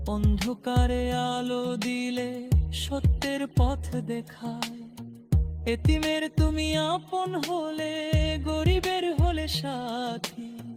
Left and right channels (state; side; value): identical; both; correlation 1.00